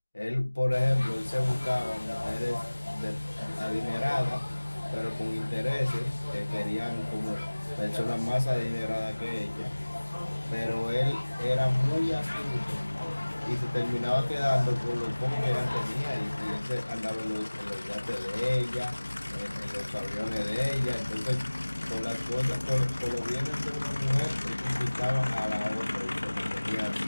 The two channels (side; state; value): both; inverted; correlation -1.00